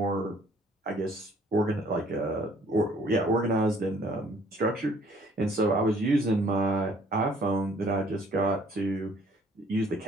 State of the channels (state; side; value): normal; both; correlation 0.59